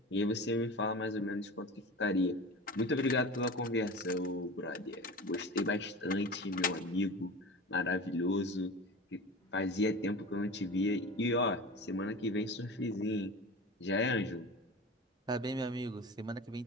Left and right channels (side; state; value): both; normal; correlation 0.33